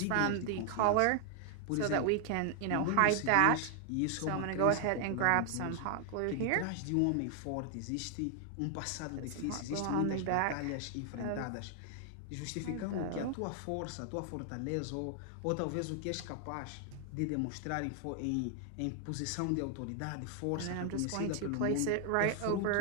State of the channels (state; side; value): different; both; correlation 0.00